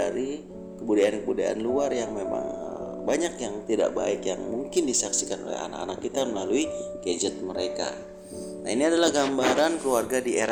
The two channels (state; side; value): identical; both; correlation 1.00